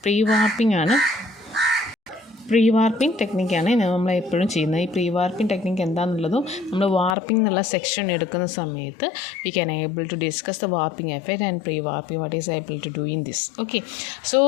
pre warping ആണ്. പ്രീ വാർപ്പിംഗ് ടെക്നിക്കാണ് നമ്മൾ എപ്പോഴും ചെയ്യുന്നത്. ഈ പ്രീ വാർപ്പിംഗ് ടെക്നിക്ക് എന്താണെന്നുള്ളതും നമ്മൾ വാർപ്പിംഗ് എന്നുള്ള സെക്ഷൻ എടുക്കുന്ന സമയത്ത് we can able to discuss the warping effect and pre warping what is able to do in this. Okay, so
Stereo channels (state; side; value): drops out; right; at 7.2 s